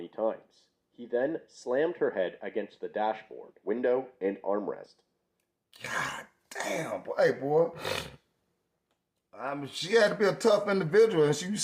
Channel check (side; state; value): both; identical; correlation 1.00